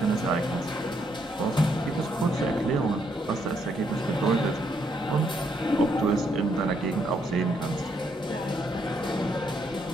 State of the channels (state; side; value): normal; both; correlation 0.74